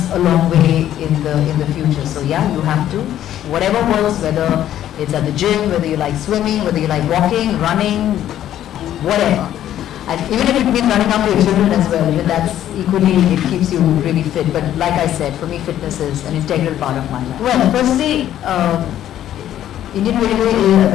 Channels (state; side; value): quieter; right; 11.7 dB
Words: a long way in the future. So yeah, you have to, whatever works, whether it's at the gym, whether you like swimming, whether you like walking, running, whatever. And even if it means running after your children as well, even that's equally, it keeps you really fit. But like I said, for me fitness is an integral part of my life. Well, firstly, Indian Railway, I